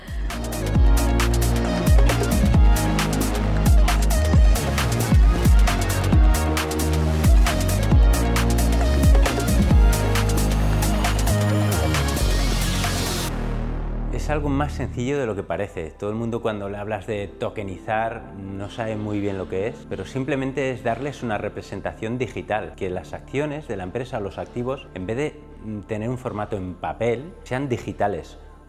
Es algo más sencillo de lo que parece. Todo el mundo cuando le hablas de tokenizar no sabe muy bien lo que es, pero simplemente es darles una representación digital, que las acciones de la empresa o los activos, en vez de tener un formato en papel, sean digitales,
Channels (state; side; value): identical; both; correlation 1.00